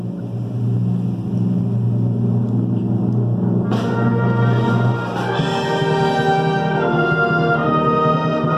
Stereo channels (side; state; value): both; identical; correlation 1.00